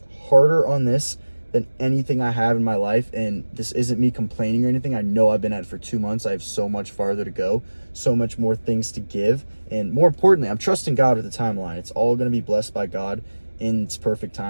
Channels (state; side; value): inverted; both; correlation -1.00